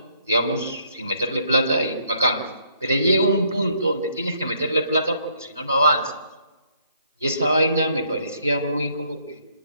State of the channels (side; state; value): both; inverted; correlation -0.68